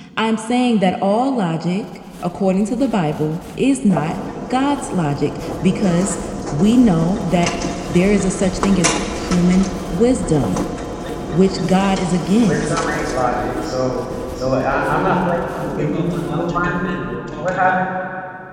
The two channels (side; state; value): both; identical; correlation 1.00